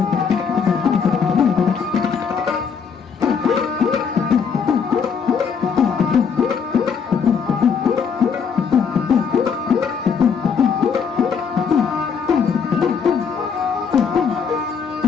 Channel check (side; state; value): right; quieter; 6.3 dB